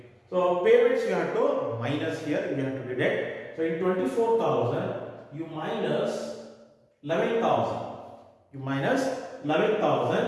So payments you have to minus here, you have to deduct. So in 24,000 you minus 11,000. You minus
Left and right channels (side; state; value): both; identical; correlation 1.00